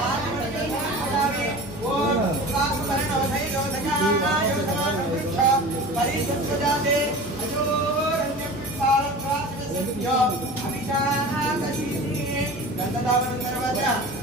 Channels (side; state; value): both; normal; correlation 0.36